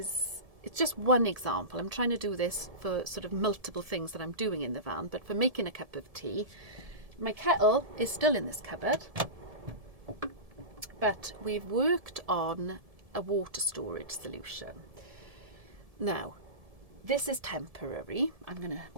just one example. I'm trying to do this for sort of multiple things that I'm doing in the van, but for making a cup of tea, my kettle is still in this cupboard, but we've worked on a water storage solution. Now, this is temporary. I'm going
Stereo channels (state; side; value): late; left; 1.7 ms